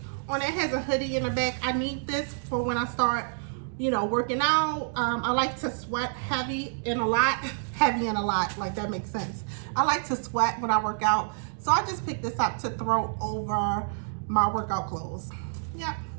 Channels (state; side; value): silent; left; digital silence